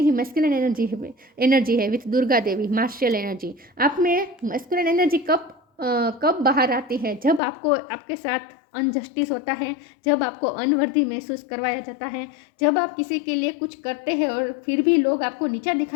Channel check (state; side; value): drops out; right; at 7.4 s